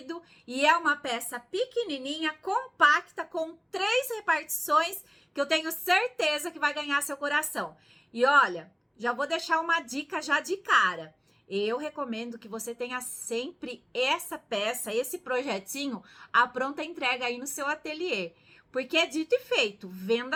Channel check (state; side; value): identical; both; correlation 1.00